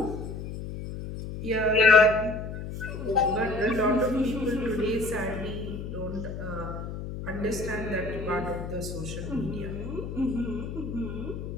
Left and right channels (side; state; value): left; noise; hum, 7 dB below the sound